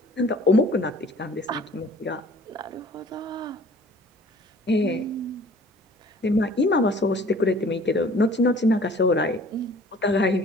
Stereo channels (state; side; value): normal; both; correlation 0.51